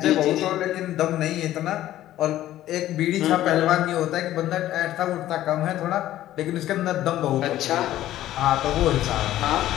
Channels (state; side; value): quieter; right; 13.7 dB